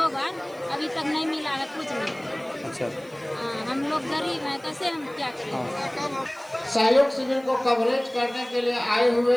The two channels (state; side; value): noise; right; hiss, 27 dB below the sound